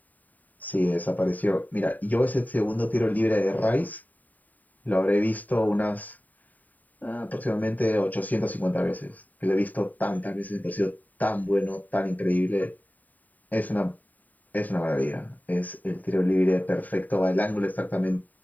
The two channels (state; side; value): late; right; 0.080 ms